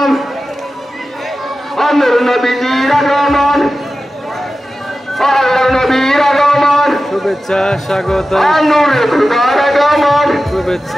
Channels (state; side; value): normal; both; correlation 0.94